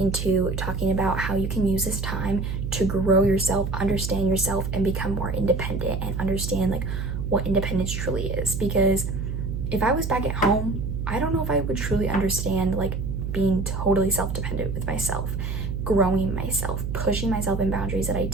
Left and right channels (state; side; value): noise; right; hum, 3 dB below the sound